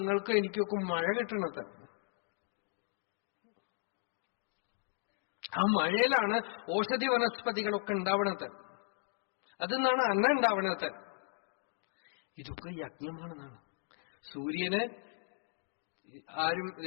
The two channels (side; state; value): right; silent; 54 dB below the other